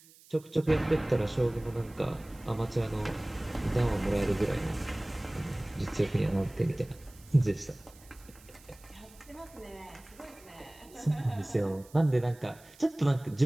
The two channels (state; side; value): noise; right; hiss, 24 dB below the sound